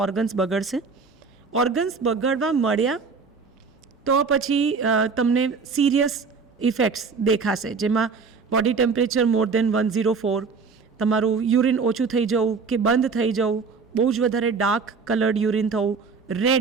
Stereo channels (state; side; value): quieter; left; 5.0 dB